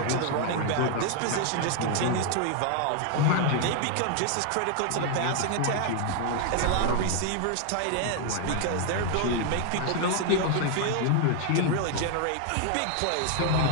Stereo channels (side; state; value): both; different; correlation 0.00